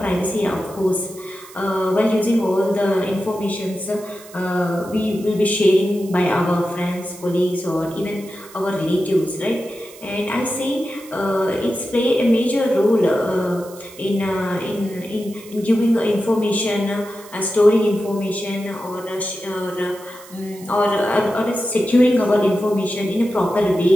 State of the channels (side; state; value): right; noise; hiss, 20 dB below the sound